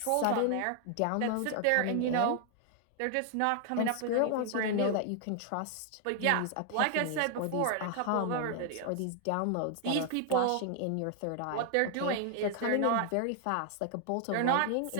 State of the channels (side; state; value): both; different; correlation 0.00